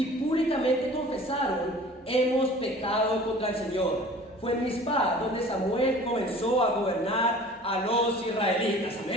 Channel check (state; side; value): normal; both; correlation 0.45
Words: públicamente confesaron: hemos pecado contra el Señor. Fue en Mizpa donde Samuel comenzó a gobernar a los israelitas.